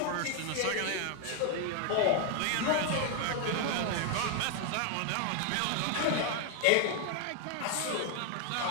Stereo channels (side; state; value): both; different; correlation 0.01